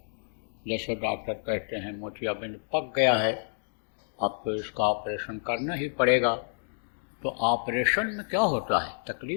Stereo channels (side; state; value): right; silent; digital silence